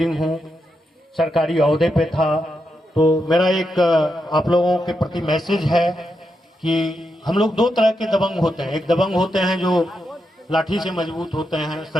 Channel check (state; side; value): normal; both; correlation 0.85